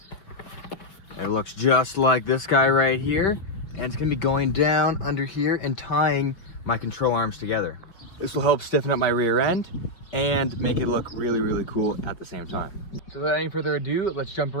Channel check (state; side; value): late; right; 5.2 ms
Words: It looks just like this guy right here, and it's going to be going down under here and tying my control arms together. This will help stiffen up my rear end and make it look really, really cool at the same time. So without any further ado, let's jump